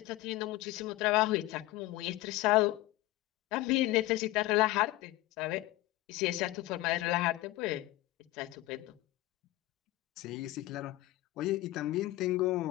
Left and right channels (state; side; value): quieter; right; 18.0 dB